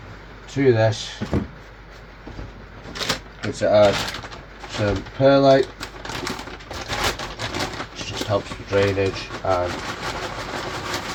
to this I'm going to add some perlite, which just helps with drainage and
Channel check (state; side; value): identical; both; correlation 1.00